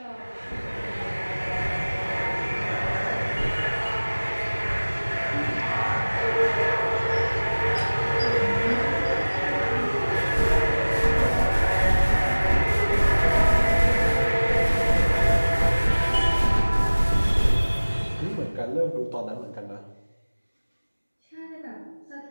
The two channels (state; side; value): inverted; both; correlation -1.00